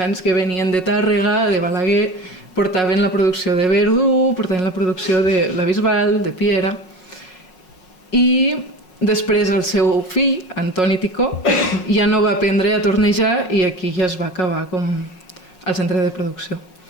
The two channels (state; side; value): late; right; 5.5 ms